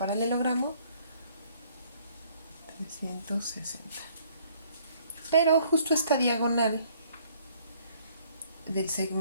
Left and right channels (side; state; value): both; inverted; correlation -0.62